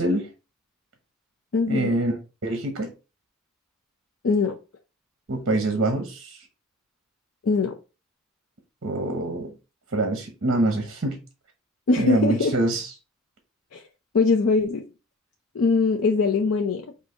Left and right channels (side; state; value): both; normal; correlation 0.43